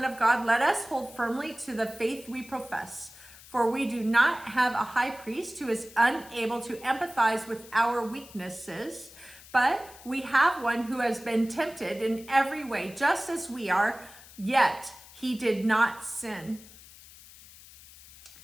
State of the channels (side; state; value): left; noise; hiss, 20 dB below the sound